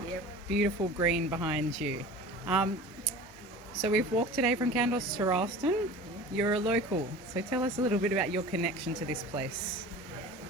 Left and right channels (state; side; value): normal; both; correlation 0.38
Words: Yep. Beautiful green behind you. Um, so we've walked today from Kandos to Rylstone. You're a local, so tell us a little bit about your connection to this place.